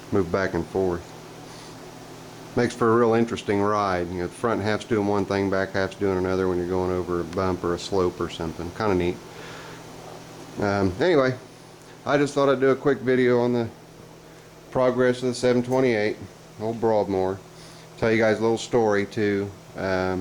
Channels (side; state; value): both; identical; correlation 1.00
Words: move back and forth. Makes for a real interesting ride. You know, the front half's doing one thing, back half's doing another when you're going over a bump or a slope or something. Kind of neat. Anyway, I just thought I'd do a quick video on the progress of the 728, old Broadmoor. Tell you guys a little story too.